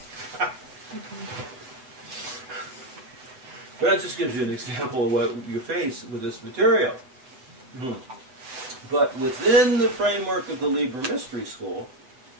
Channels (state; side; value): late; left; 7.8 ms